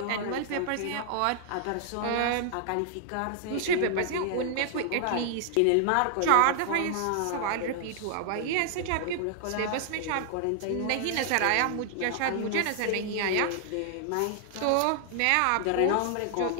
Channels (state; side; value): different; both; correlation 0.00